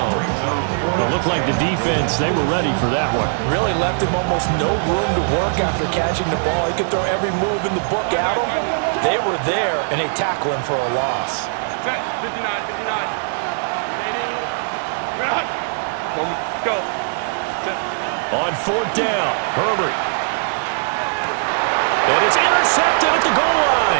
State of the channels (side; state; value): left; silent; digital silence